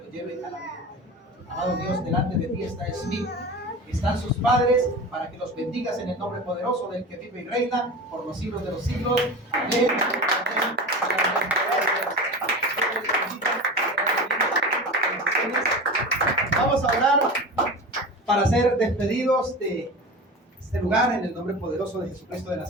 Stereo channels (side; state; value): both; normal; correlation 0.31